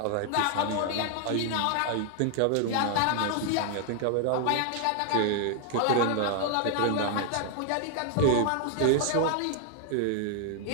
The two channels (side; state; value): both; different; correlation 0.00